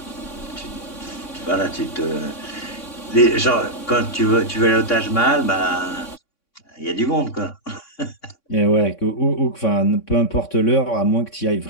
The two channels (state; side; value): late; right; 3.6 ms